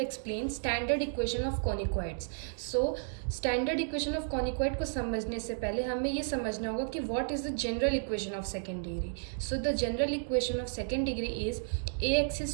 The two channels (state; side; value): silent; left; digital silence